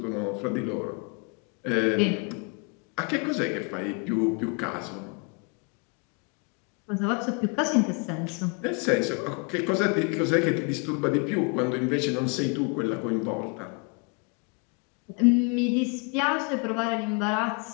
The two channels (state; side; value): quieter; right; 34.4 dB